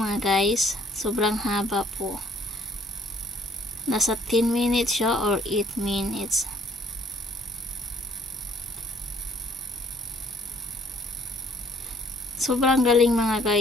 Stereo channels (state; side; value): normal; both; correlation 0.60